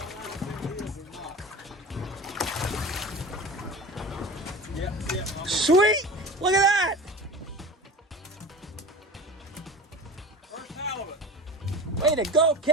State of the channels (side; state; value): both; normal; correlation 0.35